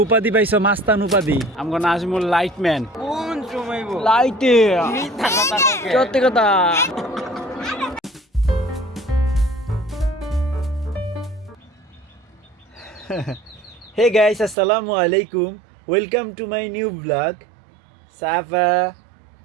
উপাধি পাইছো, মাস্তান উপাধি। আমগো নাজমুল লাইটম্যান। কোন সময় লাইটে মিথ্যা কথা ককে সত্যি কথা। হে গাইস, আসসালামু আলাইকুম, welcome to my new blog. Safa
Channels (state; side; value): drops out; left; at 14.6 s